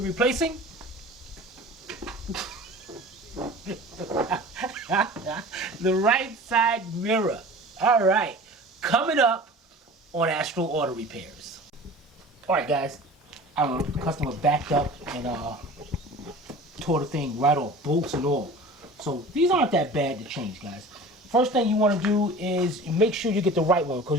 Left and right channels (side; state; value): both; normal; correlation 0.40